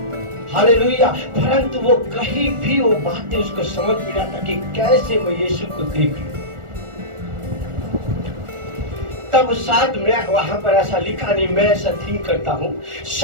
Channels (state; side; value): late; left; 1.4 ms